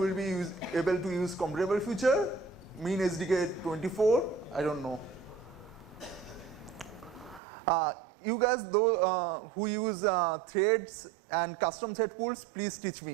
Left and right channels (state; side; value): drops out; left; at 7.4 s